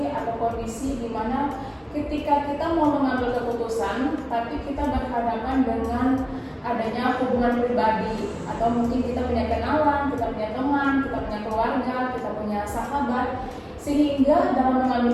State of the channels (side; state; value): both; identical; correlation 1.00